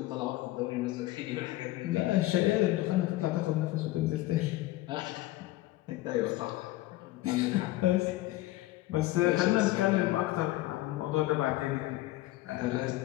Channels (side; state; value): right; quieter; 17.2 dB